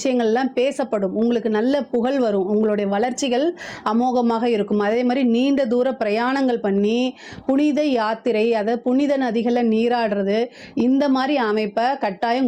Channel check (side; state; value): both; identical; correlation 1.00